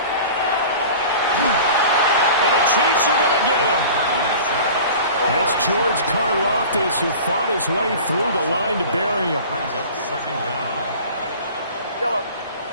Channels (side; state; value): both; inverted; correlation -0.40